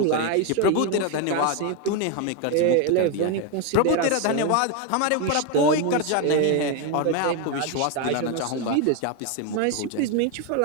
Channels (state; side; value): different; both; correlation 0.01